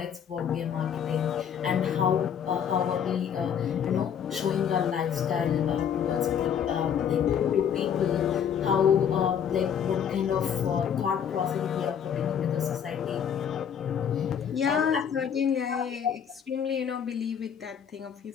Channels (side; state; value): right; quieter; 8.2 dB